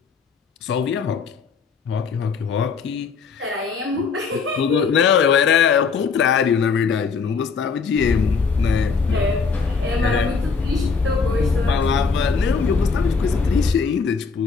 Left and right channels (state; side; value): quieter; right; 5.3 dB